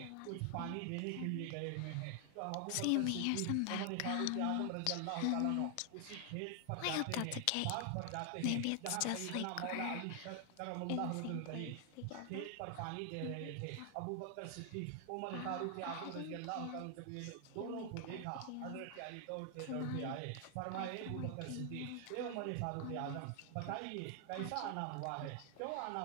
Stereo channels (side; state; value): both; different; correlation 0.00